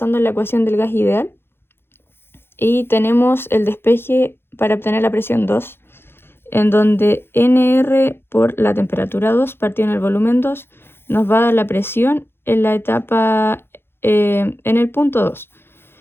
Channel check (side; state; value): right; late; 0.11 ms